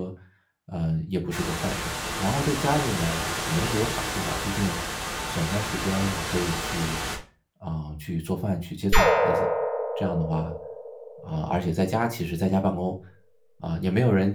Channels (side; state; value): both; identical; correlation 1.00